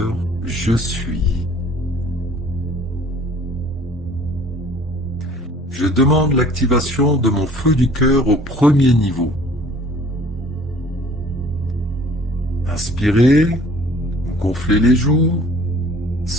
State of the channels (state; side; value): normal; both; correlation 0.52